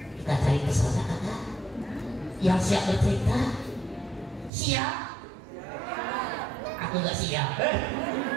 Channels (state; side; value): drops out; left; at 4.5 s